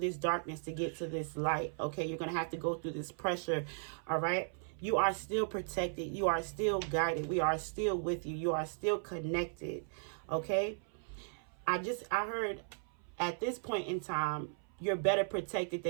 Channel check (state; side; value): silent; left; 53 dB below the other